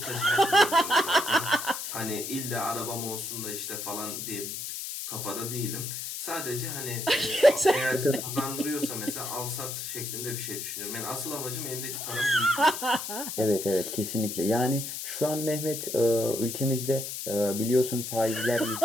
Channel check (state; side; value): noise; left; hiss, 6 dB below the sound